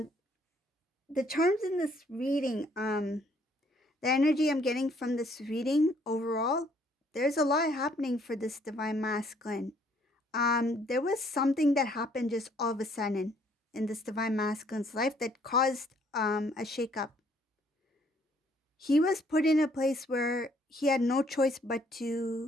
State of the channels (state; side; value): normal; both; correlation 0.65